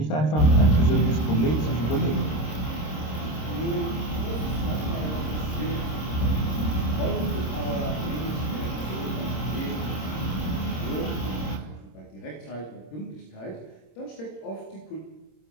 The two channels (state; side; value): late; right; 26 ms